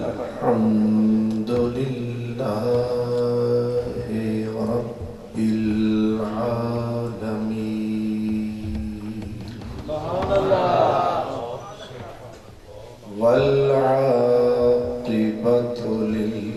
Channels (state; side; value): identical; both; correlation 1.00